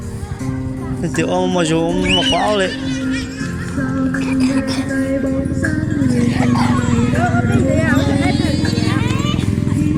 thì ông mà rồi ông mà khóa đấy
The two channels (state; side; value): identical; both; correlation 1.00